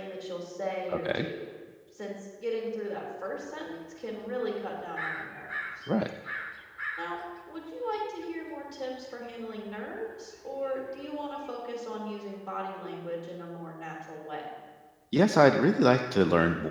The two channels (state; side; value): identical; both; correlation 1.00